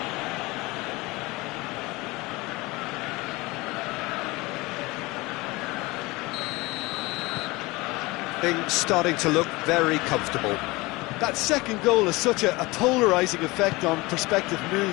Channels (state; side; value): quieter; right; 22.5 dB